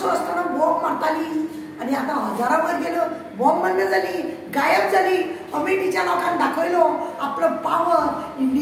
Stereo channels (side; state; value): both; identical; correlation 1.00